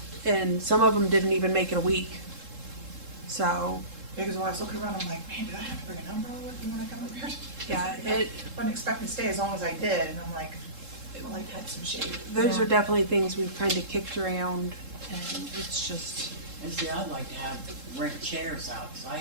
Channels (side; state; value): left; late; 3.7 ms